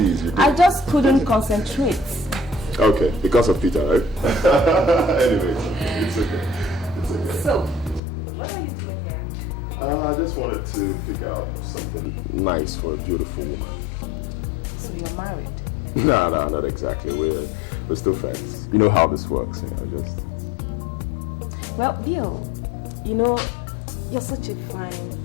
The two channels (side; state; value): right; drops out; at 8.0 s